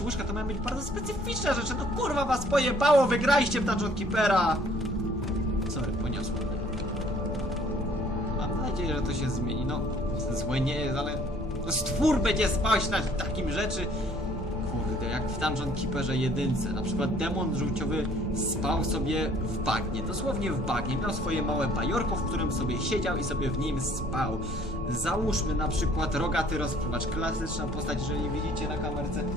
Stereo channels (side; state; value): both; normal; correlation 0.58